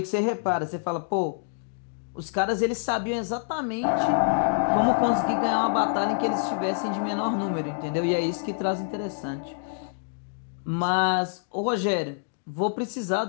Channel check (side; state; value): right; silent; digital silence